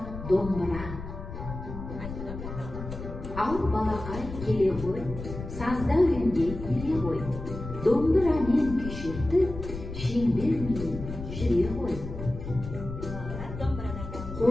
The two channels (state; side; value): noise; left; rumble, 9 dB below the sound